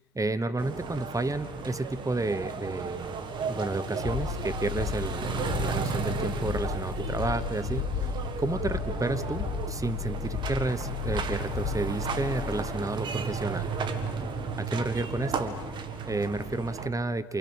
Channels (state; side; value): normal; both; correlation 0.59